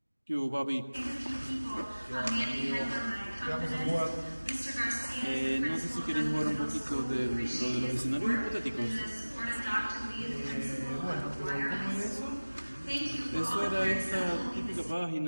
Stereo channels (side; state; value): both; inverted; correlation -1.00